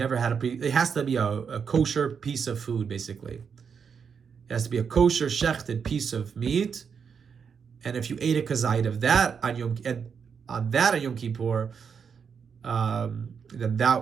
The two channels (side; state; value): left; quieter; 6.5 dB